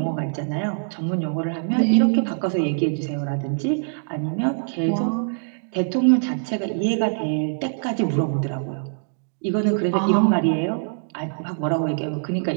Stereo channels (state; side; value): silent; left; digital silence